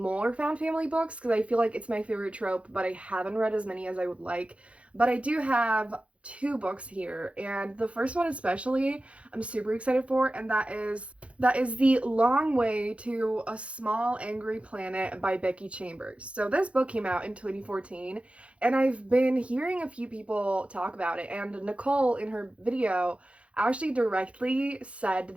found family books, because I feel like it's my favorite trope, but I haven't read as many as I would like. But I do have two books here, and the first one especially I'm super excited for, and that is The Long Way to a Small Angry Planet by Becky Chambers. So this book came out in 2014, and I've been hearing a few people talk about it, and Nicole in her video actually directly said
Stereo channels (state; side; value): late; left; 0.062 ms